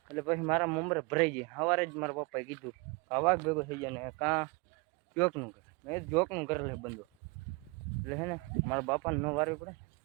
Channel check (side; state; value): left; quieter; 28.2 dB